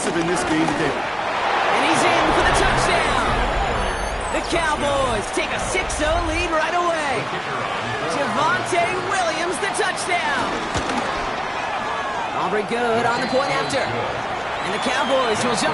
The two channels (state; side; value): identical; both; correlation 1.00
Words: in this game today. And he's in for the touchdown. The Cowboys take a 6-0 lead right away. Javonte Williams, the touchdown. Aubrey good on the point after. And the Cowboys will